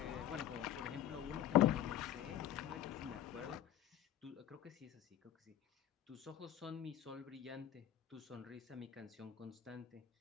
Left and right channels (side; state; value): right; quieter; 11.4 dB